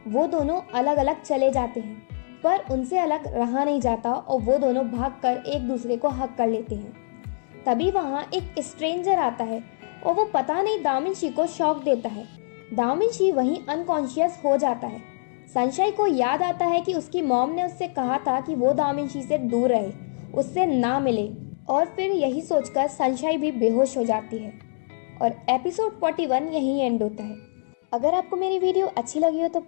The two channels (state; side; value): silent; right; digital silence